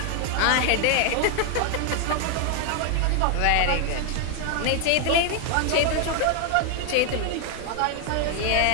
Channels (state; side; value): different; both; correlation 0.00